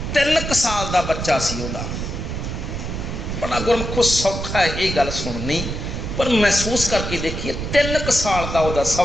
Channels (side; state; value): right; noise; rumble, 5 dB below the sound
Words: 3 साल का बच्चा सी, बड़ा गुरमुखो सौखा है ये गल सुननी, पर महसूस करके देखिए 3 साल का वह